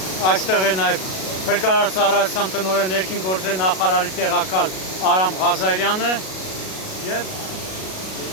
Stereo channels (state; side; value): late; right; 37 ms